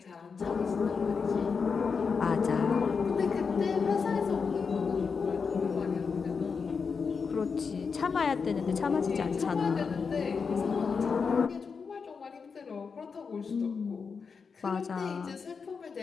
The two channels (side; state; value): right; quieter; 5.5 dB